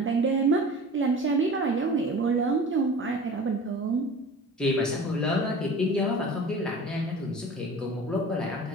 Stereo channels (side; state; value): both; normal; correlation 0.39